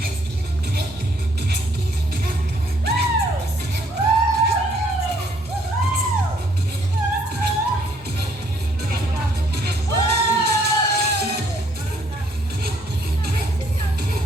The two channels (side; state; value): both; normal; correlation 0.66